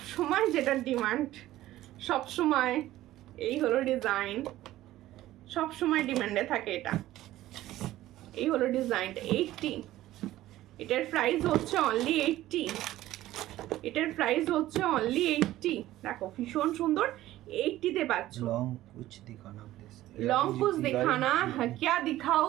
যেটা ডিমান্ড, সবসময় এই হলো ডিজাইন, সবসময় ডিমান্ডে থাকে এটা। এই হলো ডিজাইনটা 80, এটার প্রাইস হচ্ছে অনলি 80, এটার প্রাইস হচ্ছে অনলি 80। দেখো ভীষণ সুন্দর, 80-তে পাচ্ছ। লং কুছ দিখানা প্লিজ, लॉन्ग कुछ दिखाना है, क्या दिखाओ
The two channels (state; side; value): quieter; left; 15.0 dB